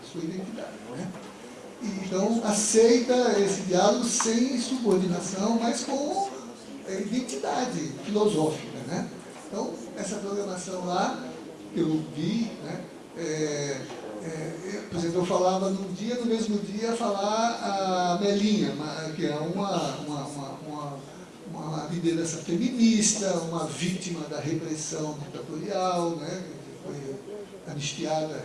sua identidade. Né? Então, aceita esse diálogo sem subordinação, mas com identidade filosófica. Né? Então, essa programação lá, que eu vi, né, por exemplo, eu falava num dia, no mesmo dia, falar a Melinha, que é uma liderança feminista, uma vítima da repressão ditatorial, né, que foi anistiada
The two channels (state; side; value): identical; both; correlation 1.00